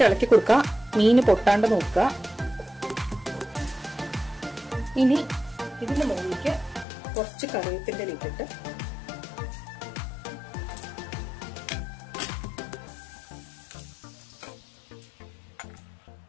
ഇളക്കി കൊടുക്കുക, മീന് പൊട്ടാണ്ട് നോക്കുക. ഇനി ഇതിന്റെ മുകളിലേക്ക് കുറച്ച് കറിവേപ്പിന്റെ ഇട്ടിട്ട്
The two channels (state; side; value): drops out; right; at 6.9 s